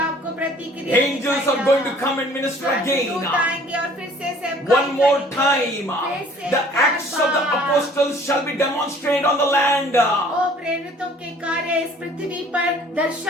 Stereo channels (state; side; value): normal; both; correlation 0.53